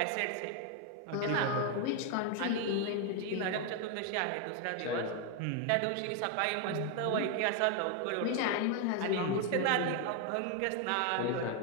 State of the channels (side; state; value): both; different; correlation 0.01